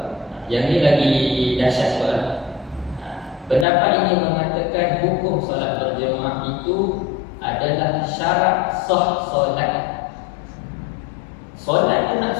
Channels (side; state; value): right; drops out; at 3.7 s